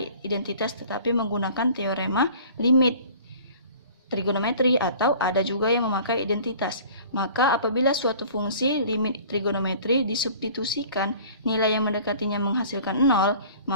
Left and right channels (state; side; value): inverted; both; correlation -0.47